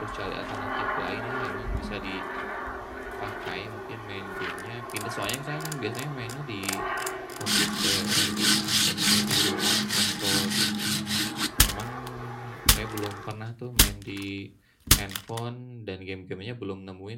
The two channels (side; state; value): both; identical; correlation 1.00